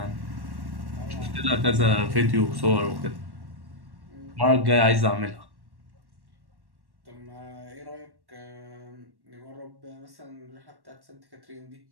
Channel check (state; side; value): late; left; 1.1 ms